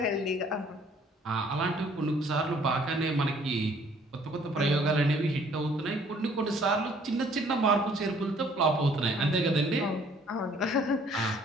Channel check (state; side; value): normal; both; correlation 0.59